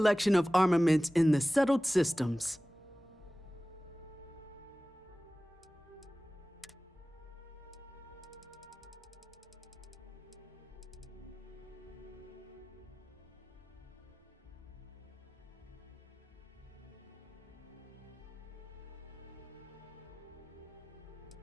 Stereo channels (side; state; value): both; normal; correlation 0.97